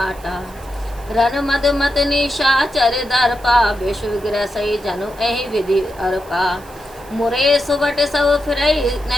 रन मद मत निशाचर दर्पा विश्व ग्रसई जनु एहि विधि अर्पा। मुरे सुबट सब फिरई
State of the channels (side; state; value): right; noise; hiss, 23 dB below the sound